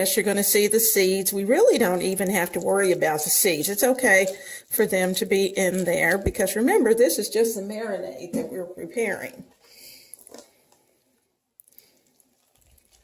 you're going to see the seeds. We really don't even have to worry about the seeds. It's okay for them to be in there because remember, this is just the marinade that we're preparing.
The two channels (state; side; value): identical; both; correlation 1.00